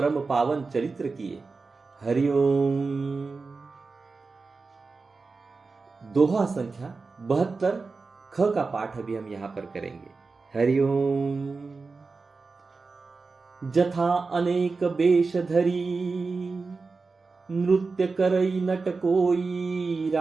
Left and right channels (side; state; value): left; quieter; 4.2 dB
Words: पावन चरित्र किए। हरिओम। दोहा संख्या 72 ख का पाठ अभी हम यहां पर करेंगे। हरिओम। जथा अनेक वेश धरी, नृत्य करई नट कोई